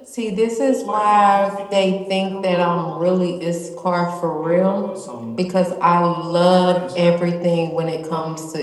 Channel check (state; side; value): identical; both; correlation 1.00